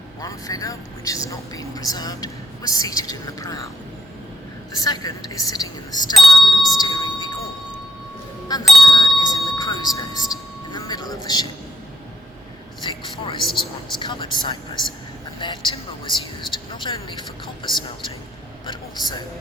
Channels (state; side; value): normal; both; correlation 0.72